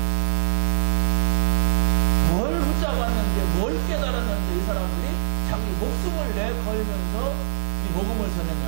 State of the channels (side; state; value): left; silent; 64 dB below the other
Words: 뭘 붙잡았는데, 뭘 깨달았는데, 이 사람들이 자기 목숨을 내걸면서 이 복음을 전했냔